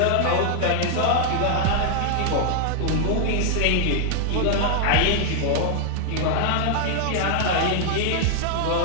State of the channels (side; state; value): both; different; correlation 0.00